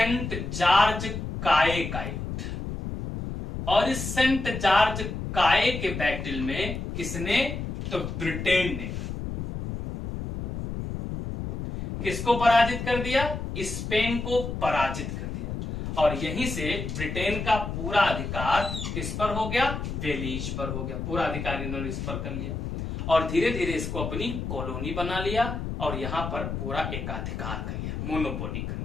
जॉर्ज काय का युद्ध। और इस सेंट जॉर्ज काय के बैटल में किसने? तो ब्रिटेन ने किसको पराजित कर दिया? स्पेन को पराजित कर दिया। और यहीं से ब्रिटेन का पूरा अधिकार किस पर हो गया? बेलीज पर हो गया। पूरा अधिकार इन्होंने इस पर कर लिया, और धीरे धीरे इसको अपनी कॉलोनी बना लिया, और यहां पर पूरा एकाधिकार कर लिया, मोनोपोली कर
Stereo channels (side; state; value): left; noise; rumble, 5 dB below the sound